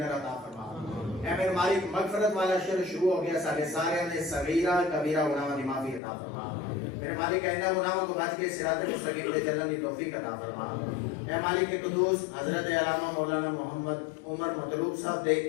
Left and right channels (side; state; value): right; drops out; at 6.0 s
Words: عطا فرما۔ اے میرے مالک مغفرت والا شر شروع ہو گیا، سارے نے صغیرہ کبیرہ گناہوں دی معافی عطا فرما۔ میرے مالک آئندہ گناہوں کو بچ کے صراط مستقیم پہ چلنے کی توفیق عطا فرما۔ اے مالک قدوس حضرت علامہ مولانا محمد عمر مطلوب صاحب دے